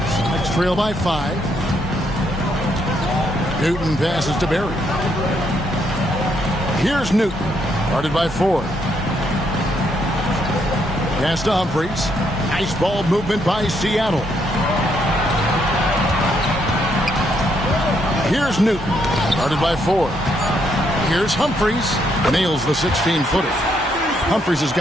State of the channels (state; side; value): normal; both; correlation 0.74